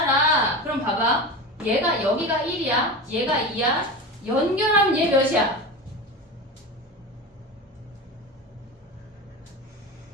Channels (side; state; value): both; normal; correlation 0.26